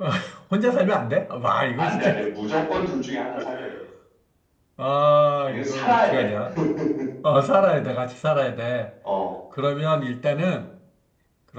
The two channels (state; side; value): identical; both; correlation 1.00